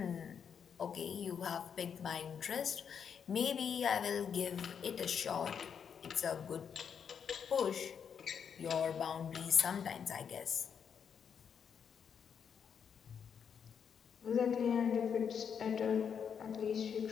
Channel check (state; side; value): quieter; right; 7.3 dB